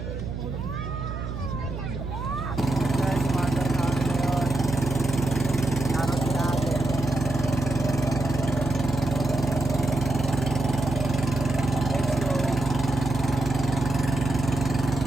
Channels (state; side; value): noise; right; hum, 6 dB below the sound